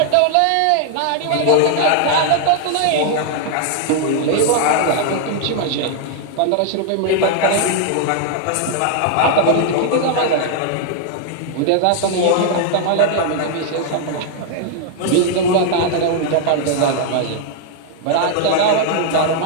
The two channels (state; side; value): different; both; correlation 0.00